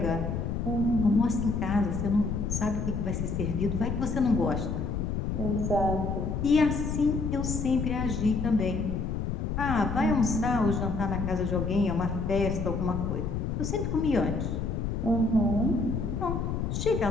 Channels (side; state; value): left; noise; rumble, 2 dB below the sound